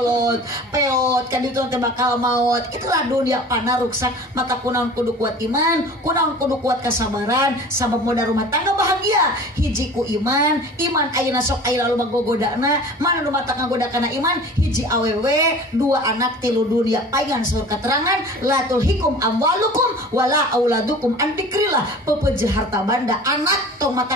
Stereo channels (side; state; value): both; normal; correlation 0.41